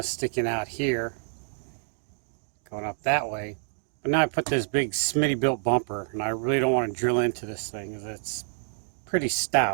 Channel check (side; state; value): left; silent; digital silence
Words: sticking out here, going up that way. But now I put this big Smittybilt bumper, and I really don't want to drill into this thing because it's pretty